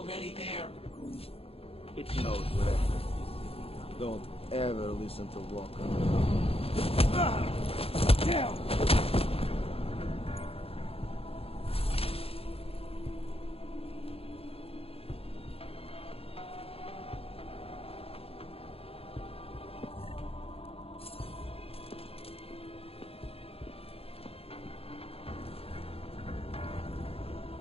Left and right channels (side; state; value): right; late; 0.28 ms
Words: there. It knows we're after it. Don't ever listen to Walker. Damn!